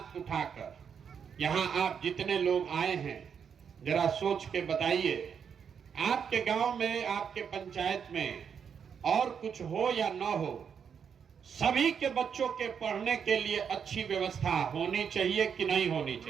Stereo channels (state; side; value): quieter; left; 7.2 dB